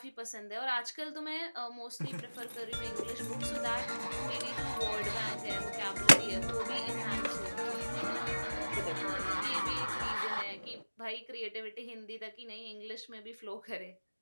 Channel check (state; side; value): inverted; both; correlation -1.00